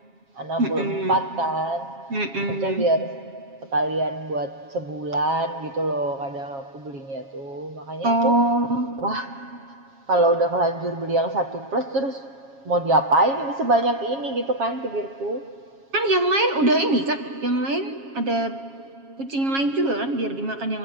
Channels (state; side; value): late; left; 7.3 ms